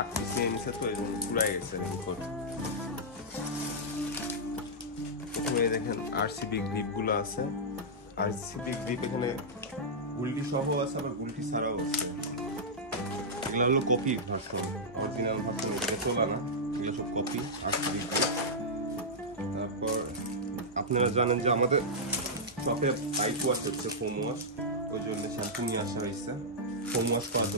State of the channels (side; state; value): both; normal; correlation -0.09